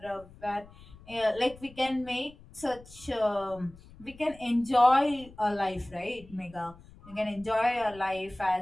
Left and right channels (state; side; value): noise; left; rumble, 21 dB below the sound